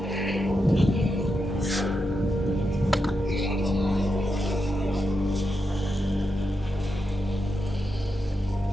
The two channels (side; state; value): both; normal; correlation 0.86